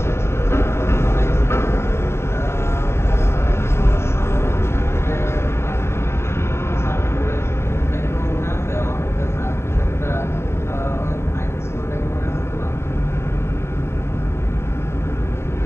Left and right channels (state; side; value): late; right; 0.12 ms